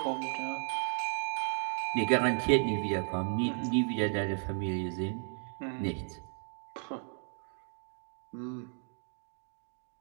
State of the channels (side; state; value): left; silent; 55 dB below the other